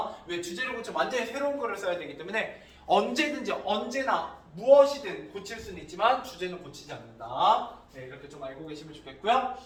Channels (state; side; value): identical; both; correlation 1.00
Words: 왜 주제를 고치면 완전히 새로운 글을 써야 되기 때문에 언제든지 언제나 무엇이든 고칠 수는 있지만 주제는 고치지 않는다. 네, 이렇게 좀 알고 계시면 좋겠고요.